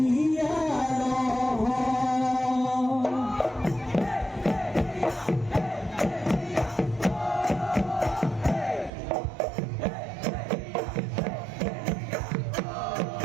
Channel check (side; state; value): left; drops out; at 8.9 s